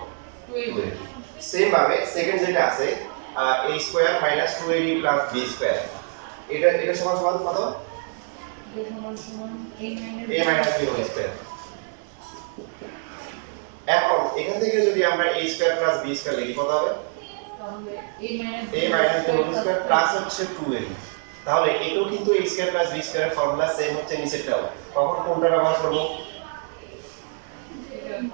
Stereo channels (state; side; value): silent; left; 58 dB below the other